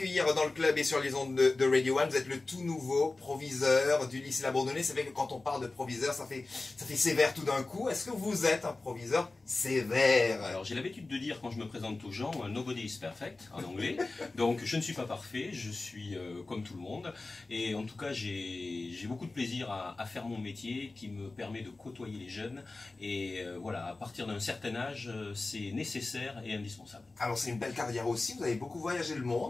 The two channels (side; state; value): right; quieter; 3.3 dB